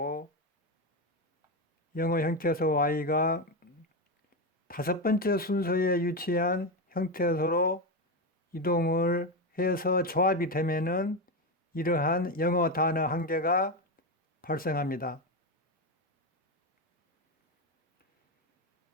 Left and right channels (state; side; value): normal; both; correlation 0.13